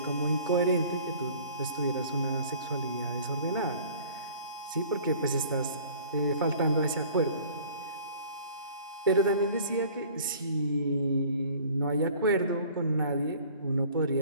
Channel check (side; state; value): both; inverted; correlation -0.49